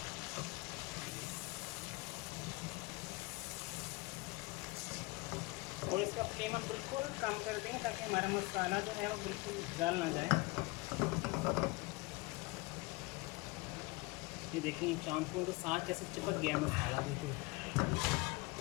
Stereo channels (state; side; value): quieter; right; 24.6 dB